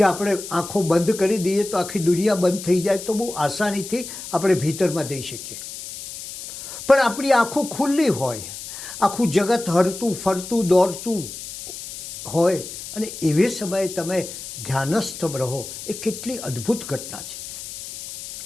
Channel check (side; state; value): left; noise; hiss, 11 dB below the sound